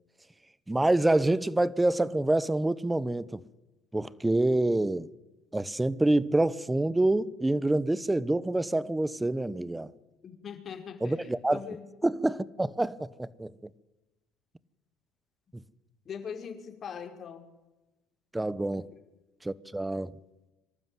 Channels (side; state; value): both; normal; correlation 0.98